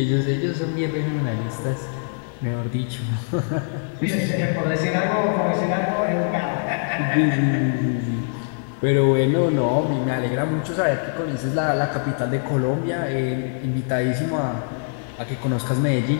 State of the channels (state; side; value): silent; right; digital silence